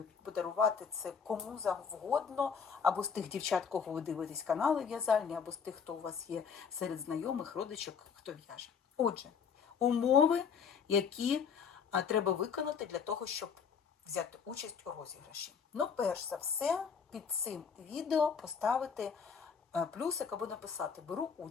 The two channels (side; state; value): right; quieter; 6.5 dB